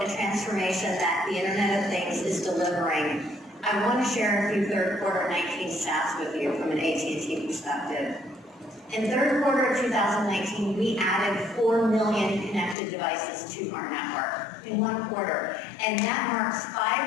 transformation that the Internet of Things is delivering, I want to share a few third quarter 19 stats with you from an AT&T perspective. In third quarter of 2019, we added 4 million connected devices to our network in one quarter. And that marks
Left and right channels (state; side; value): drops out; right; at 12.8 s